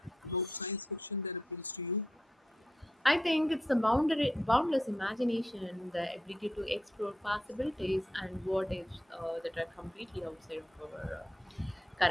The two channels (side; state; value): both; normal; correlation 0.82